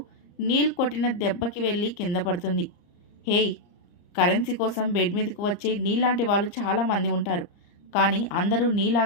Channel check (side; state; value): right; late; 34 ms